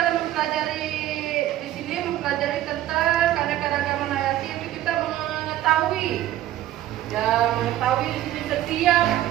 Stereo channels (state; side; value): quieter; left; 13.5 dB